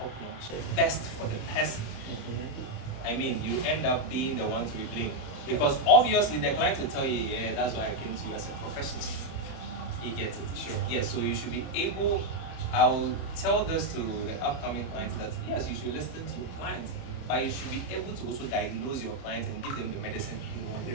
notch. Best for the person. I mean, you end up being the one to be blamed. Because obviously the client will tell you, yeah, that's why I came to you as a professional. You get it? Sure. Yeah, so you should be able, I will tell this to the upcoming clients that yes, you should listen to your clients, but you should be able to also diagnose your clients and give them the medicine they want. They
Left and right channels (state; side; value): late; right; 30 ms